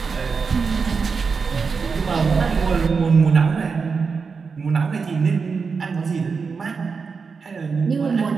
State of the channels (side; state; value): left; quieter; 5.2 dB